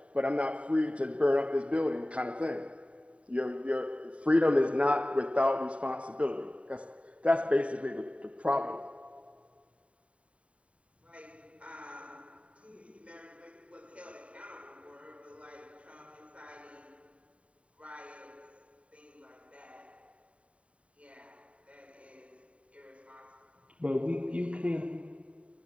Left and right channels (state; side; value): late; left; 0.064 ms